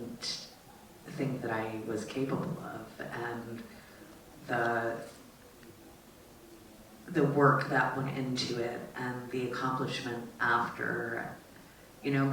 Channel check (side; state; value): both; identical; correlation 1.00